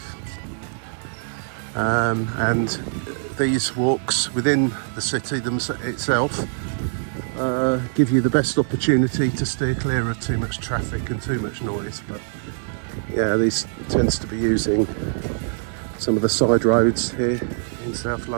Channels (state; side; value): silent; left; digital silence